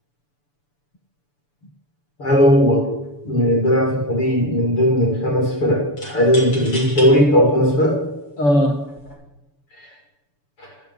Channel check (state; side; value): late; right; 6.9 ms